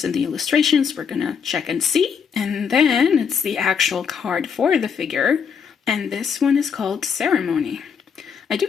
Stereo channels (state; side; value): quieter; right; 6.7 dB